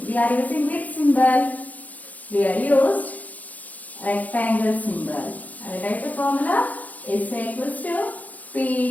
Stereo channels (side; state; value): right; late; 0.077 ms